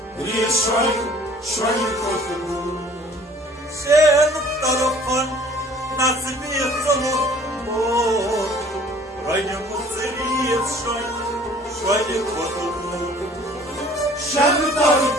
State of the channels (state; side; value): normal; both; correlation 0.53